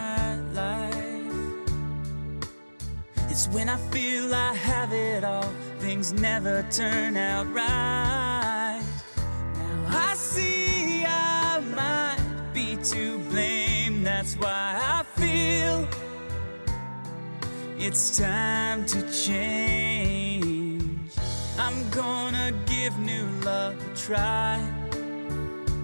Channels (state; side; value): inverted; both; correlation -1.00